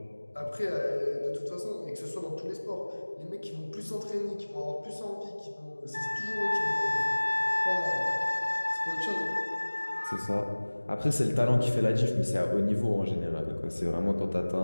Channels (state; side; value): inverted; both; correlation -1.00